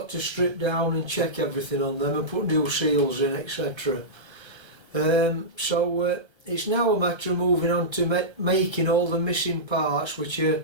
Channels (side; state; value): left; late; 1.3 ms